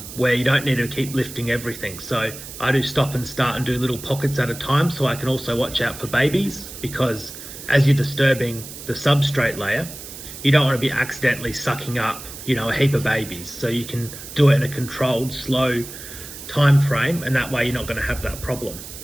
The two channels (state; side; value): noise; right; hiss, 13 dB below the sound